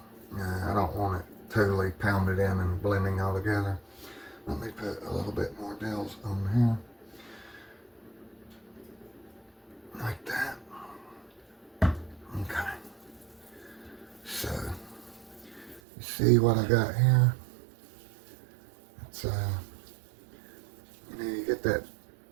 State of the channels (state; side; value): drops out; left; at 15.8 s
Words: I don't want it totally pounded in and blending all together. Let me put a little bit more Dales on here. Like that. Okay. So, you see what I got here? It's, you know, you get that